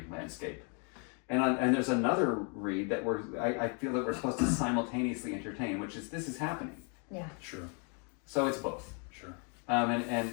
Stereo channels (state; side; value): quieter; right; 38.0 dB